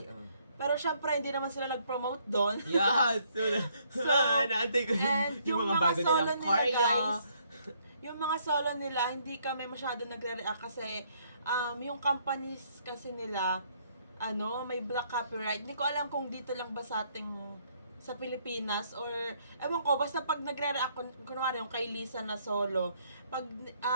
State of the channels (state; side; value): inverted; both; correlation -0.68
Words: pero syempre, hindi naman sila nag-promote doon. Yes! So, naantay ko and yung mga bago solo nilang nila, choreo. guys, yung mga solo nila, hindi kami masyado nagre-react kasi yung companies kasi nila, may black copyright. Hindi ko alam kung dito lang ba sa ating sa Pilipinas or ewan ko, basta pag nagre-react kunwari yung kay Lisa na solo, pag